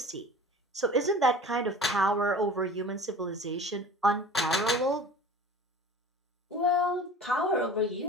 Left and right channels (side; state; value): both; normal; correlation 0.41